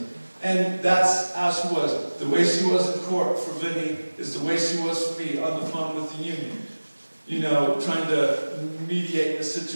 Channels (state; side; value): inverted; both; correlation -1.00